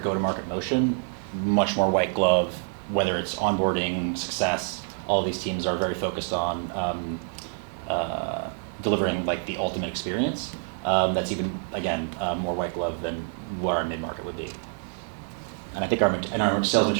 go-to-market motion, much more white glove, whether it's onboarding, success. All of these teams are very focused on delivering like the ultimate experience. That's even, again, more white glove than what our mid-market would be. And I think our sales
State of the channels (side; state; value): left; silent; 60 dB below the other